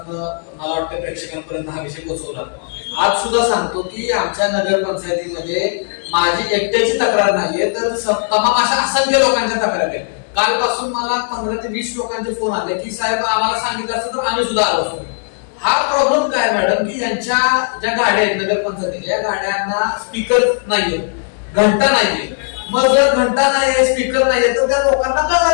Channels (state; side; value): silent; right; digital silence